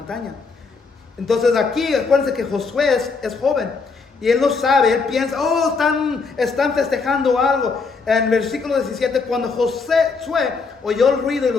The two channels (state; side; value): quieter; right; 4.6 dB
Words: Entonces aquí acuérdense que Josué es joven y él no sabe, él piensa, están festejando algo. En el versículo 17, cuando Josué oyó el ruido y